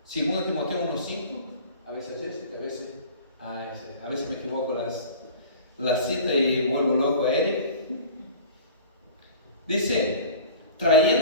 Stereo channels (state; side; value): inverted; both; correlation -0.42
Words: 2 Timoteo 1:5, a veces a veces me equivoco la cita y vuelvo loco a Eric. Dice,